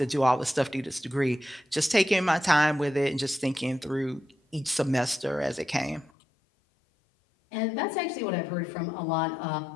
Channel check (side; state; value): right; drops out; at 6.1 s